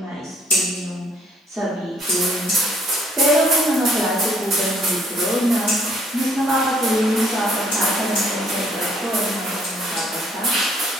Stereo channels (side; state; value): both; normal; correlation 0.64